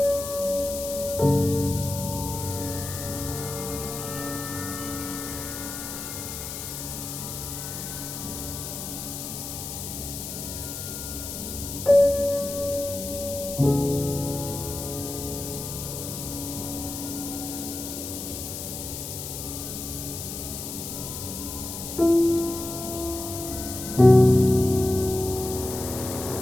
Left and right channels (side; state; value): left; noise; hiss, 7 dB below the sound